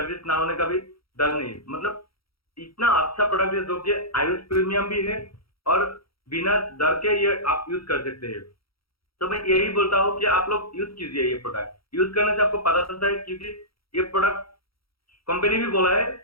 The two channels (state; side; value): late; right; 0.75 ms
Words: ना होने का भी डर नहीं। मतलब इतना अच्छा प्रोडक्ट है, जो कि आयुष प्रीमियम भी है, और बिना डर के ये आप यूज कर सकते हैं। तो मैं यही बोलता हूँ कि आप लोग यूज कीजिए ये प्रोडक्ट। यूज करने से आपको पता चलता है, क्योंकि ये प्रोडक्ट कंपनी भी बोला है